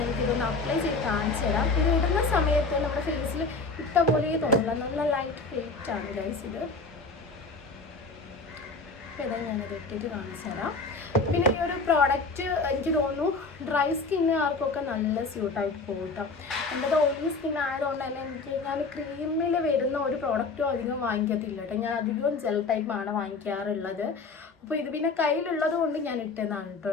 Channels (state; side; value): quieter; right; 3.9 dB